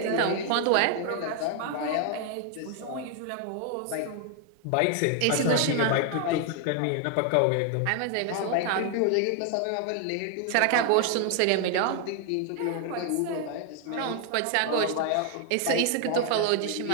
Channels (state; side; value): different; both; correlation 0.00